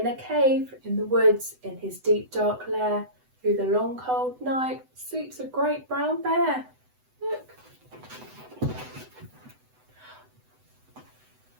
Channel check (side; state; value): left; late; 8.0 ms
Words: a cave in the woods, in his deep dark lair, through the long cold night, sleeps a great brown bear. Look.